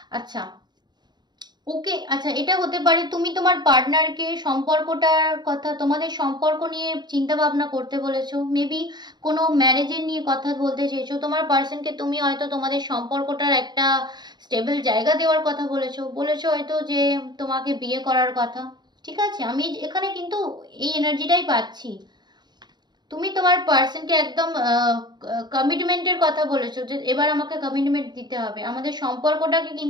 আচ্ছা ওকে, আচ্ছা এটা হতে পারে তুমি তোমার পার্টনারকে সম্পর্কটার কথা, তোমাদের সম্পর্ক নিয়ে চিন্তা ভাবনা করতে বলেছো, মেবি কোনো ম্যারেজের নিয়ে কথা বলতে চেয়েছো, তোমার পার্সনকে তুমি হয়তো তোমাদের সম্পর্কটার একটা স্টেবল জায়গা দেওয়ার কথা বলেছো হয়তো যে তোমাকে বিয়ে করার কথা। ঠিক আছে, আমি এখানে কিন্তু এই এনার্জিটাই পাচ্ছি, তুমি তোমার পার্সনকে একদম কমিটমেন্টের কথা বলেছো, যে এবার আমাকে কমিটমেন্ট দিতে হবে, আমাদের সম্পর্কটাকে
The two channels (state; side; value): late; left; 0.21 ms